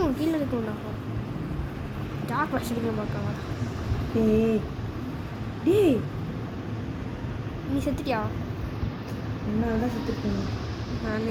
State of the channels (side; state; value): both; identical; correlation 1.00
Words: உங்க கீழே எடுக்கணும். ஜாக் வச்சுருக்க பார்க்காங்க. ஏய் டேய் நீ செத்துட்டியா? என்னால் தான் செத்துருக்கேன். நான்